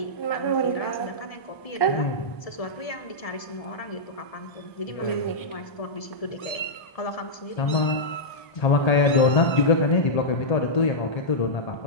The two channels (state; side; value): late; right; 1.3 ms